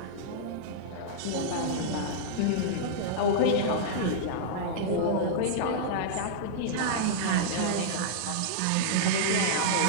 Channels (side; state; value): both; different; correlation -0.02